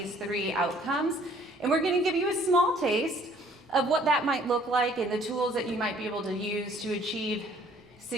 three outcomes, and we're going to give you a small taste of what that might look like and the tools that you might be able to use to achieve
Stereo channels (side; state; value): both; normal; correlation 0.59